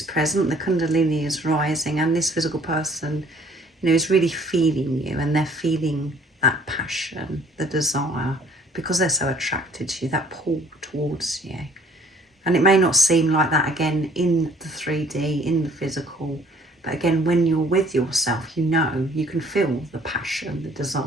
present, the Kundalini is rising, and this physical person, is really feeling you, and they're feeling that passion, the desire, because they're so attracted to you, that pull towards you. And it may not seem like that again in the 3D, in the physical, but again, when you're with yourself, you can feel the passion, the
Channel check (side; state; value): both; normal; correlation 0.57